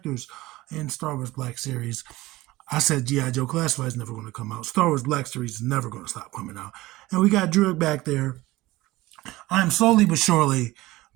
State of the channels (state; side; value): quieter; left; 18.7 dB